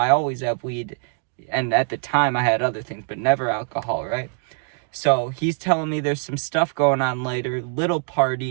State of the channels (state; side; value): quieter; left; 39.8 dB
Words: always have weed, and at the time I had other things, but never alcohol, right? So he's telling me there's some stuff going on later, little